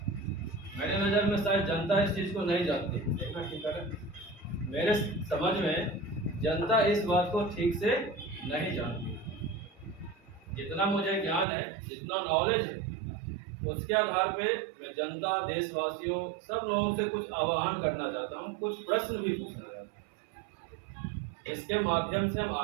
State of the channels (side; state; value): left; drops out; at 11.5 s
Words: मेरे नज़र में शायद जनता इस चीज़ को नहीं जानती। देखना ठीक है, मेरे समझ में जनता इस बात को ठीक से नहीं जानती। जितना मुझे ज्ञान है, जितना नॉलेज है, उसके आधार पे मैं जनता, देशवासियों, सब लोगों से कुछ आह्वान करना चाहता हूँ, कुछ प्रश्न भी पूछना चाहता हूँ। इसके माध्यम से हम